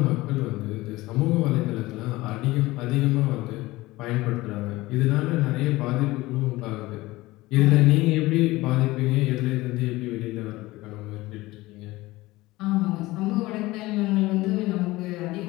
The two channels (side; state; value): right; quieter; 19.3 dB